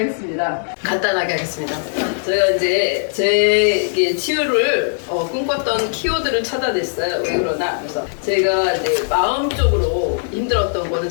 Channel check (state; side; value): silent; right; digital silence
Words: 간단하게 하겠습니다. 제가 이제 제 치유를 꿈꿨던 키워드를 찾아냈어요. 왜 그러나? 그래서 제가 이제 마음적으로 힘들었던 거는